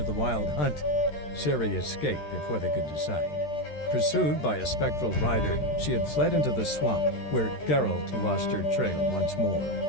the Wild Hunt. Ciri escaped before they could decide. Pursued by a spectral rider, she had fled into the swamp, where Geralt lost her trail once more.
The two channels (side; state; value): right; late; 13 ms